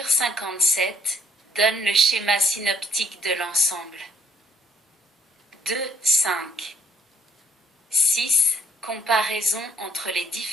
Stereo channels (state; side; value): normal; both; correlation 0.65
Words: 57 donne le schéma synoptique de l'ensemble. 2, 5. 6. Comparaison entre les